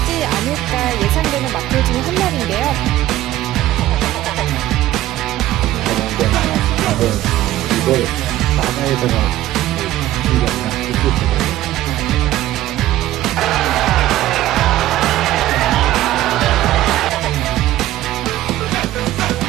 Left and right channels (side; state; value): left; quieter; 14.5 dB